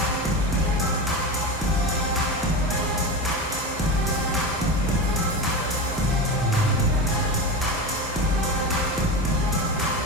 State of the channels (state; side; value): normal; both; correlation 0.22